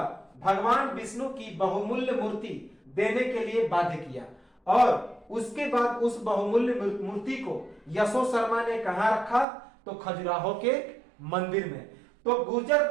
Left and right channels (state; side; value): drops out; left; at 9.5 s